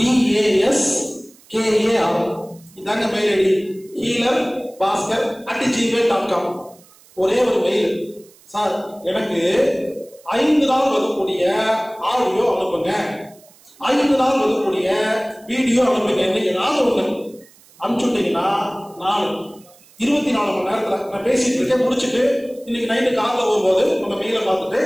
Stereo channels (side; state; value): right; noise; hiss, 27 dB below the sound